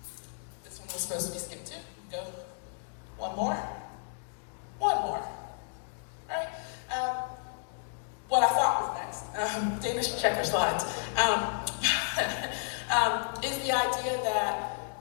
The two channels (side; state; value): right; silent; digital silence